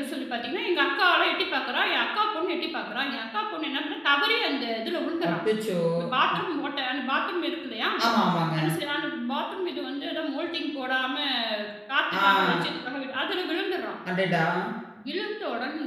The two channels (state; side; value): identical; both; correlation 1.00